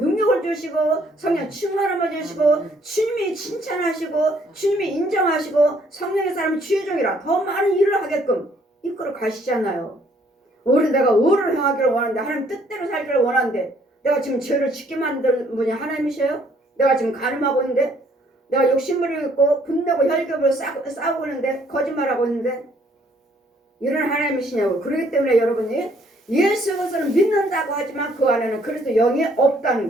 주시고 성령 충만함을 주시고 주님이 칭찬하시고 주님이 인정하시고 성령의 사람이 주의 종이라 더 많은 일을 하게끔 이끌어 가시잖아요. 내가 의를 행하기를 원하는데 하나님 뜻대로 살기를 원하는데 내가 지금 죄를 짓게 만든 분이 하나님이셔요? 내가 지금 가늠하고 있는데 내가 욕심부리고 있고 분내고 혈ገብ으로 싸우고 있는데 거짓말하고 있는데 이런 하나님이시냐고. 그렇기 때문에 여러분이 예수 그리스도를 믿는다고 하지만 그 안에는 그리스도 영이 없다는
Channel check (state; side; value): normal; both; correlation 0.64